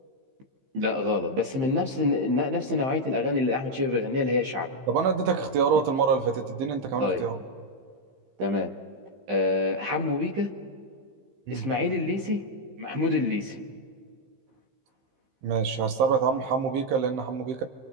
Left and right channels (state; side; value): late; left; 15 ms